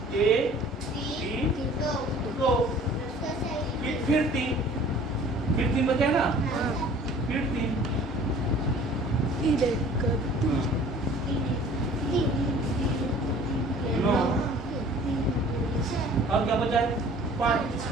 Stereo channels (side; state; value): both; normal; correlation 0.50